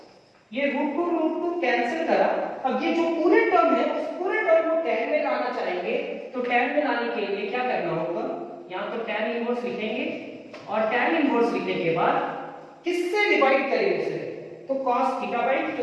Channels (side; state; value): both; identical; correlation 1.00